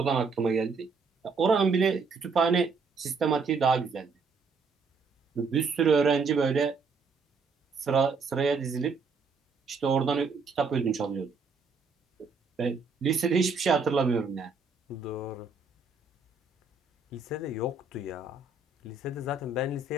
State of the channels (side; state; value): left; quieter; 4.5 dB